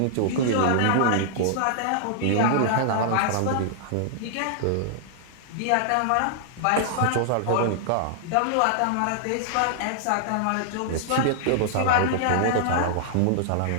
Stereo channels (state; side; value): different; both; correlation -0.01